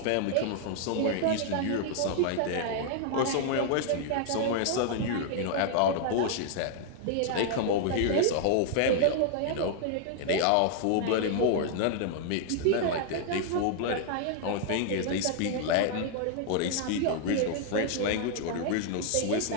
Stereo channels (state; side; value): different; both; correlation 0.00